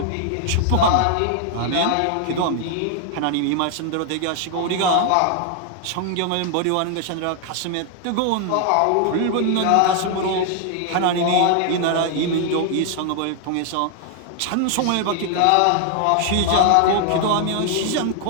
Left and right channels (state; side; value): different; both; correlation 0.00